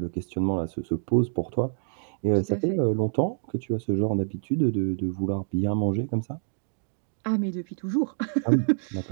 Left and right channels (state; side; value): silent; left; digital silence